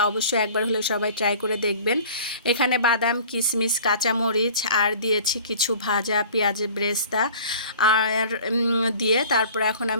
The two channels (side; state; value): both; inverted; correlation -0.45